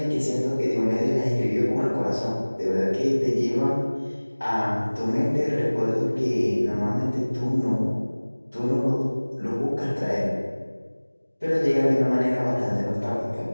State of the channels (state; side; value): inverted; both; correlation -1.00